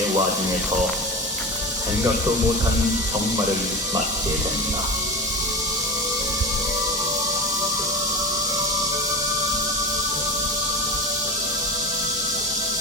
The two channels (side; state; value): both; normal; correlation 0.27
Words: 와중에서 생각도 못한 정말을 맞게 된다.